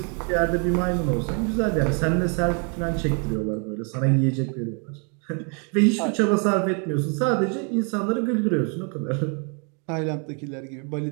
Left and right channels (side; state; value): left; quieter; 37.5 dB